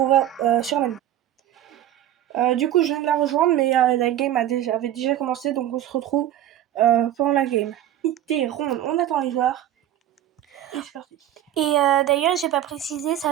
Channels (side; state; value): left; quieter; 12.1 dB